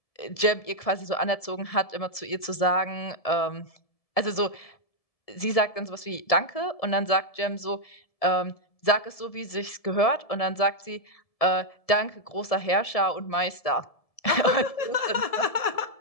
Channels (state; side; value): late; right; 1.7 ms